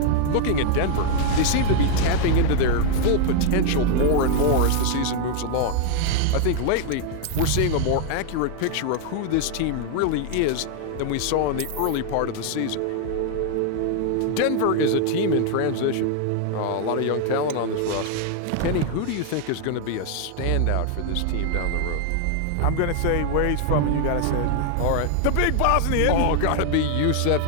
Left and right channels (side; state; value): both; different; correlation 0.00